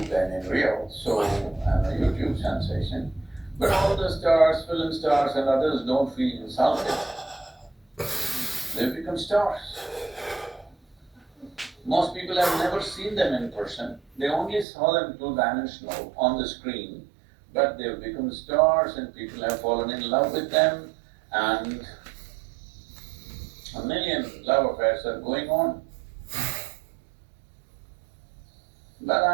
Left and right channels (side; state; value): left; drops out; at 14.7 s